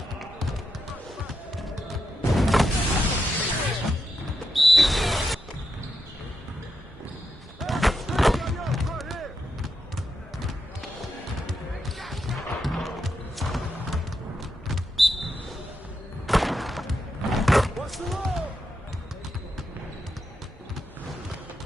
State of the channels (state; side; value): normal; both; correlation 0.85